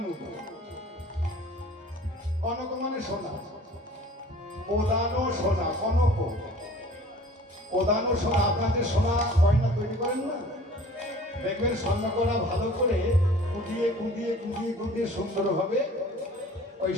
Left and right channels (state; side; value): normal; both; correlation 0.48